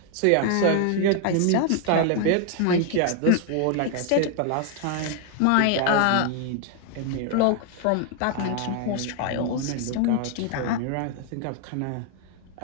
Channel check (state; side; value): different; both; correlation 0.00